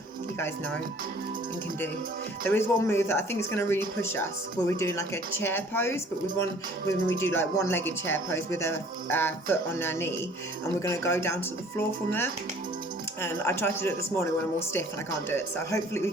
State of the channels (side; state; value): both; normal; correlation 0.53